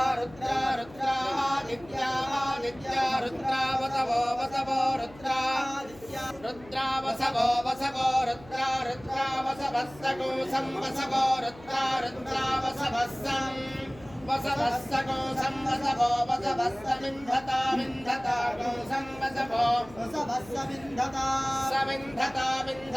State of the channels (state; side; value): noise; left; hum, 21 dB below the sound